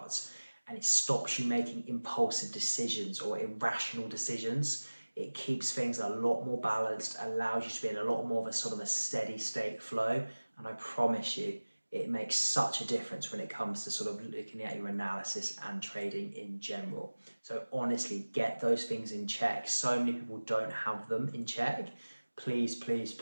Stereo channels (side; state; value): both; inverted; correlation -1.00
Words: and it stops you making impulsive decisions or irrational decisions. It keeps things a lot more balanced, allows you to be in a lot more of a sort of a steady state flow. And I promise you, it makes such a difference when it comes to sort of looking at your analysis and trading in general. So honestly, get those things in check. So many people don't have them in check. Please